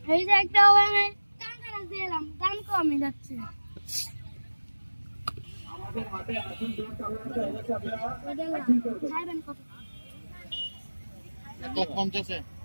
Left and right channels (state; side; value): inverted; both; correlation -1.00